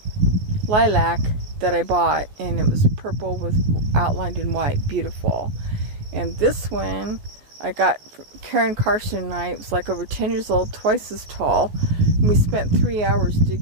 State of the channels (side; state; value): left; late; 14 ms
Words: Lilac that I bought, and it was purple with outlined in white. Beautiful. And this one I got from Karen Karsten and I. It was like over 10 years old, twice as tall. And we spent 3 hours